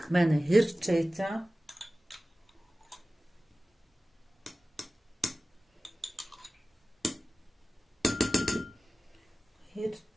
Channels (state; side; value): normal; both; correlation 0.96